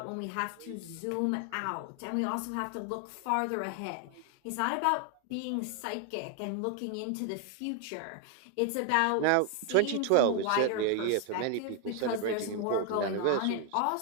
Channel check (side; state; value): both; different; correlation 0.00